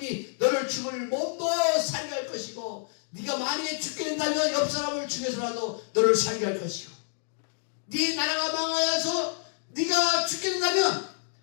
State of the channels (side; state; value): right; silent; 59 dB below the other